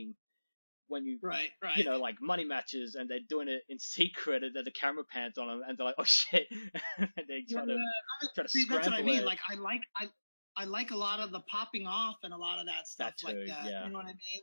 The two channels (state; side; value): inverted; both; correlation -1.00